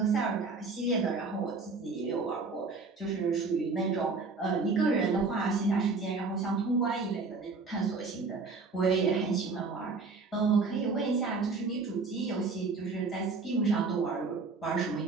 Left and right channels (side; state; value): left; quieter; 4.2 dB